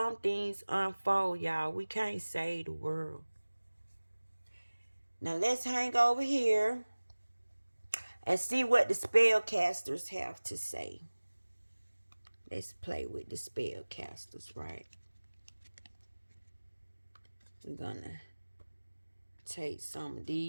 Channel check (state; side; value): inverted; both; correlation -1.00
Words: things unfold, y'all. We can't save the world. Now let's hang over here and see what the spellcasters have to say. Let's play with the spellcasters, right? We're gonna take some of